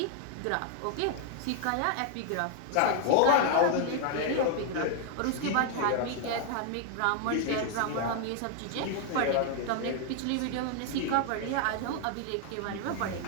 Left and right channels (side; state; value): both; different; correlation 0.00